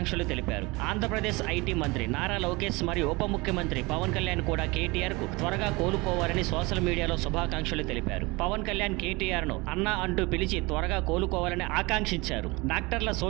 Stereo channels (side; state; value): left; quieter; 24.5 dB